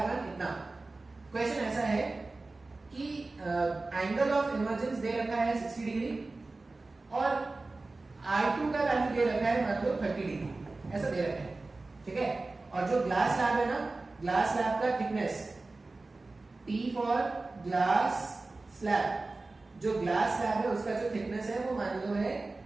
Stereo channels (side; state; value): left; quieter; 3.4 dB